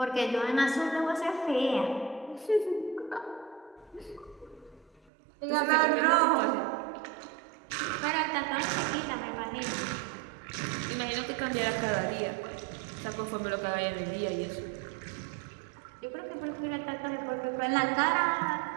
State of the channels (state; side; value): drops out; left; at 5.0 s